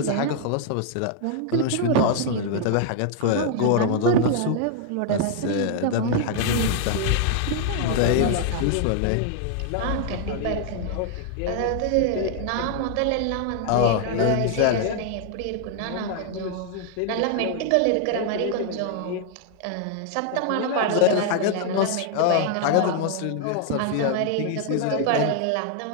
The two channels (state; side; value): different; both; correlation 0.00